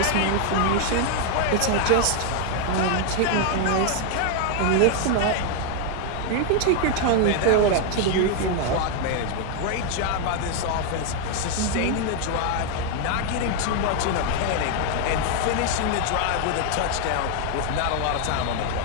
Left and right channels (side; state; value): both; different; correlation 0.00